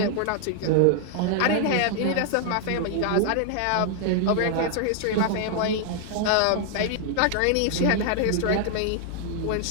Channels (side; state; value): both; different; correlation 0.00